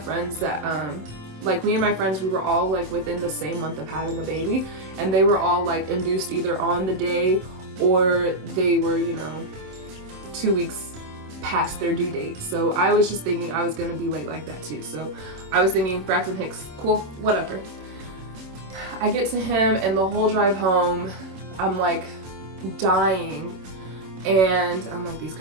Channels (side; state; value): left; late; 27 ms